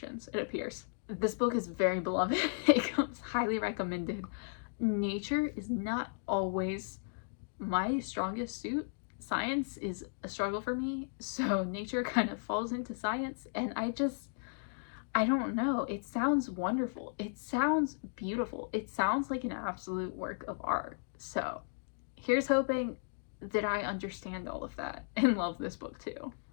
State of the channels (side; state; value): right; silent; digital silence